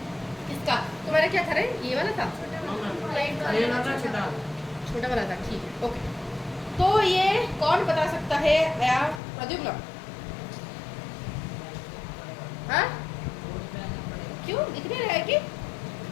किसका? तुम्हारा क्या था रे? ये वाला था, छोटा वाला था, ठीक है, ओके। तो ये कौन बता सकता है? प्रद्युम्न? हाँ, क्यों दिख नहीं रहा है कि?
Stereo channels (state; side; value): drops out; right; at 9.2 s